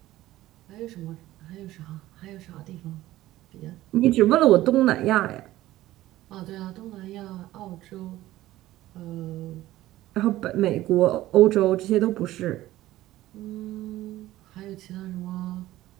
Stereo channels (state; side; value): quieter; left; 15.6 dB